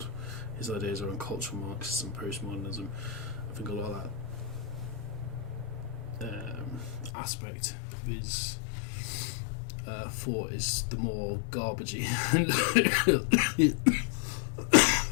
his ideas around cultural Marxism, postmodernism. I think a lot of that aspect of his thought is the more garbagey.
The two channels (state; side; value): drops out; right; at 7.1 s